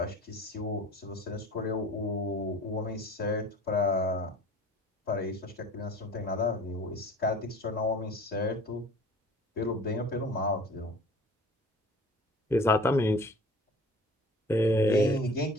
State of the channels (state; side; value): normal; both; correlation 0.45